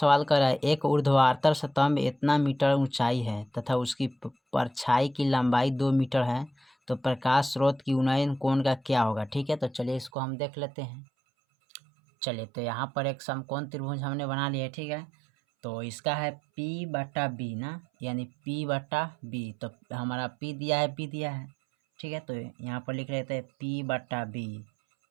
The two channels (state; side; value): drops out; left; at 10.1 s